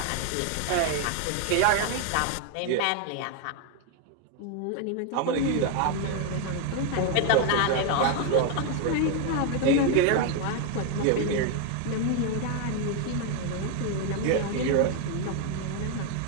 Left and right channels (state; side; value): different; both; correlation 0.01